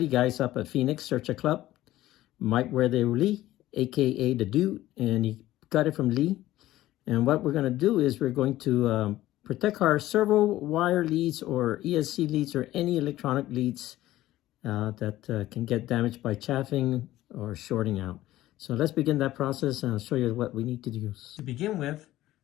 guys up at Phoenix Searcher Club. Mike Where They Lee, aka the Dude, and he got it from Lee. And what we're going to do is we're going to protect our servo wire leads or ESC leads or any electronic leads that can get damaged by chaffing or shorting out. So let's begin that process, and I'll show you what we need to do. To begin with,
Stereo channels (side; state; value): right; quieter; 15.3 dB